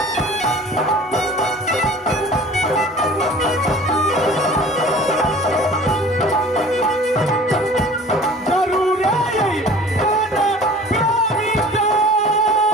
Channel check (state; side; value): normal; both; correlation 0.44